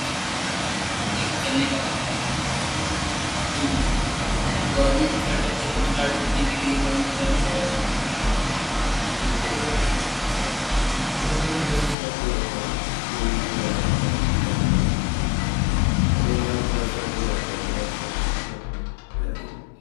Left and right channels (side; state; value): right; drops out; at 12.0 s